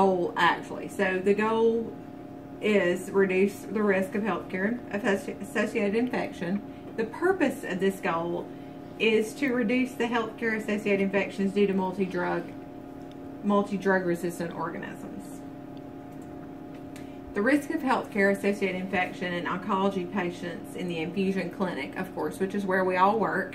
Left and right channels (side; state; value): both; identical; correlation 1.00